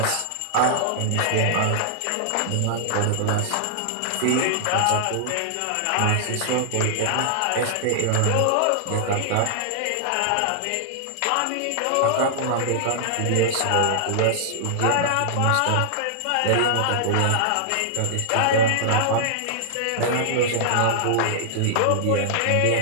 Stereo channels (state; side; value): different; both; correlation -0.01